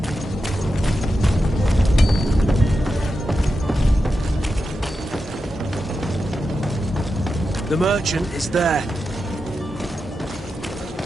The merchant is there.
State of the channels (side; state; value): both; normal; correlation 0.89